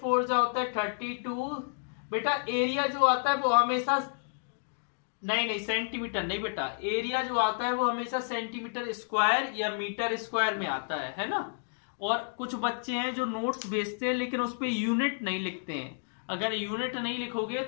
जा होता है 32। बेटा एरिया जो आता है वो हमेशा नहीं सेंटीमीटर नहीं बेटा, एरिया जो आता है वो हमेशा सेंटीमीटर स्क्वायर या मीटर स्क्वायर में आता है ना। और कुछ बच्चे हैं जो नोट्स भेजते हैं लेकिन उस पे यूनिट नहीं लिखते हैं। अगर यूनिट नहीं लिखोगे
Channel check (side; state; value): right; silent; digital silence